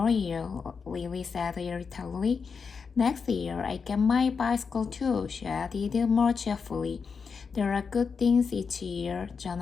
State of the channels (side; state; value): right; quieter; 5.6 dB